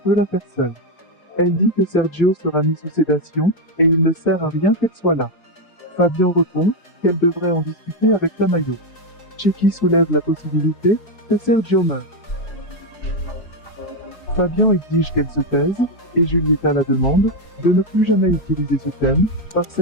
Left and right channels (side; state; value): right; late; 4.7 ms